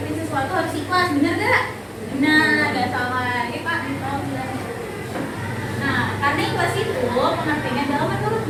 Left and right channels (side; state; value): both; identical; correlation 1.00